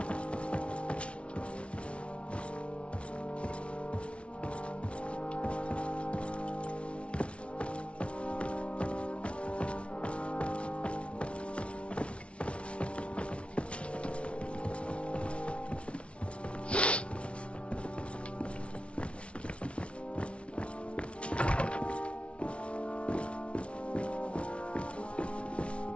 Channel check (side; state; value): right; late; 0.060 ms